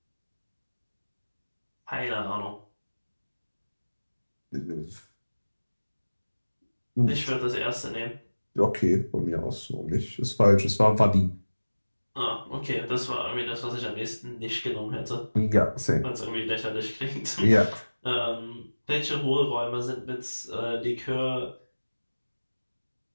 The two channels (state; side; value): inverted; both; correlation -1.00